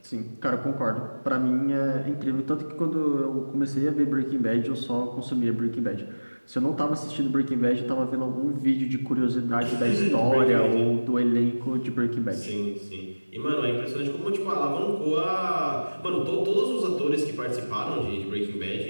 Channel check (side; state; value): both; inverted; correlation -1.00